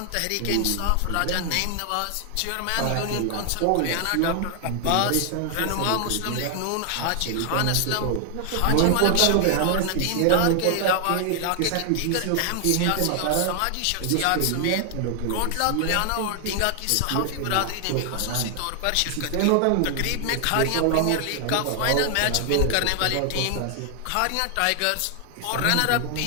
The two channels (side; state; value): both; different; correlation 0.00